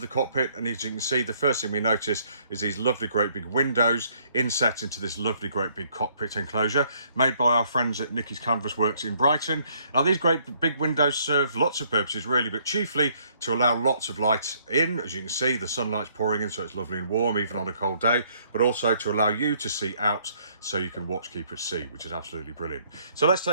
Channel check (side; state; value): both; inverted; correlation -0.65